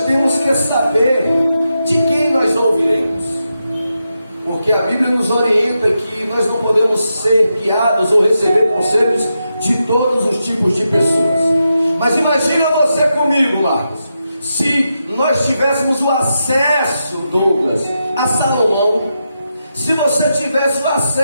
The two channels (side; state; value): both; inverted; correlation -0.86